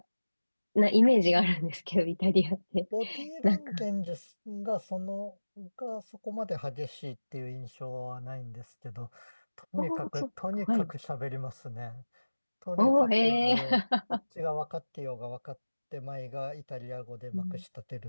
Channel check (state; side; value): inverted; both; correlation -1.00